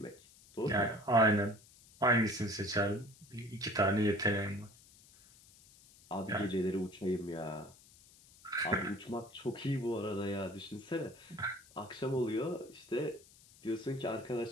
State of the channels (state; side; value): noise; left; hiss, 24 dB below the sound